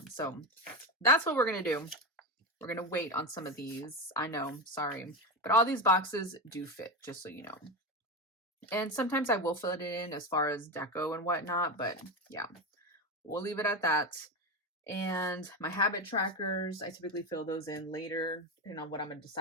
So that's what we're gonna do. We're gonna wait on some of these. I know, sorry, but all these boxes do fit, just so you know. And sometimes I will fill it in as far as deco and whatnot, but yeah, we'll leave it at that. And my habit trackers, I typically fill those in later, depending on what I'm gonna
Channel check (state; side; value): normal; both; correlation 0.18